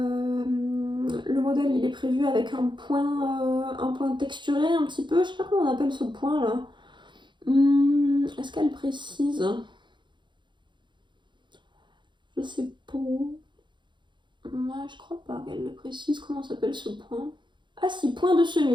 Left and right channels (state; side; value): late; left; 0.23 ms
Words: modèle, il est prévu avec un point texturé un petit peu. Je sais pas comment on appelle ce point là. Est-ce qu'elle précise? Je sais pas. Je crois pas qu'elle le précise. Comment s'appelle ce point? Ah si, point de